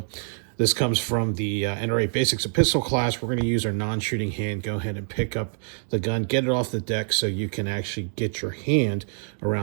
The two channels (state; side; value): silent; left; 58 dB below the other